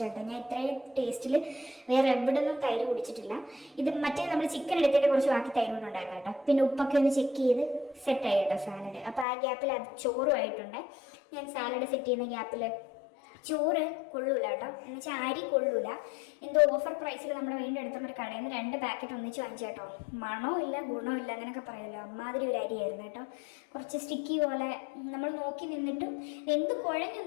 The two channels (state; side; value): drops out; right; at 9.2 s